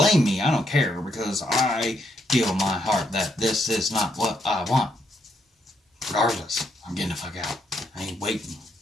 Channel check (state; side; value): normal; both; correlation 0.76